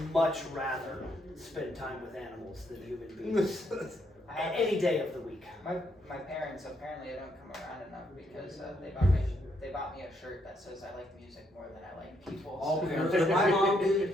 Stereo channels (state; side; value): normal; both; correlation 0.74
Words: much rather spend time with animals than human beings. Any day of the week. My parents, apparently I don't come around enough because they bought me a shirt that says I like music more than I like people. All so- parents. My mom